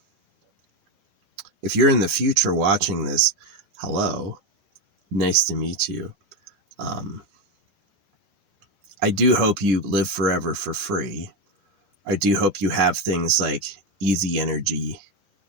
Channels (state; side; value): late; left; 10 ms